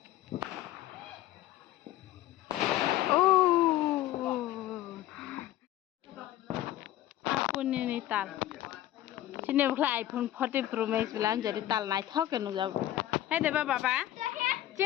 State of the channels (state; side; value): quieter; right; 14.0 dB